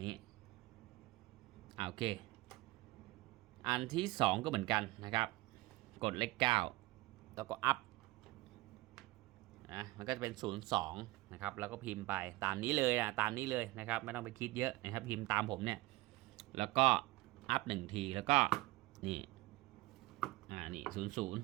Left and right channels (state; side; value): quieter; left; 20.0 dB